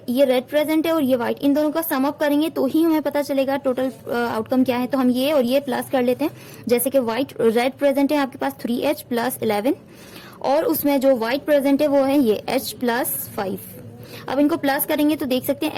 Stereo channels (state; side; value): identical; both; correlation 1.00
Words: ये रेड प्रेजेंट है और ये व्हाइट, इन दोनों का सम अप करेंगे तो ही हमें पता चलेगा टोटल आउटकम क्या है. तो हम ये और ये प्लस कर लेते हैं. जैसे कि रेड प्रेजेंट है आपके पास 3H + 11 और उसमें जो व्हाइट प्रेजेंट है वो है ये H + 5. अब इनको प्लस करेंगे तो देख सकते